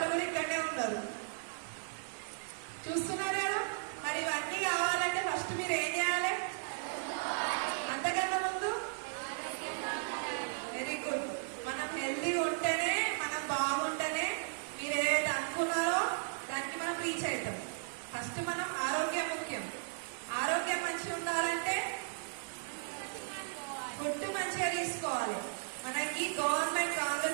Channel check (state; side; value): silent; left; 54 dB below the other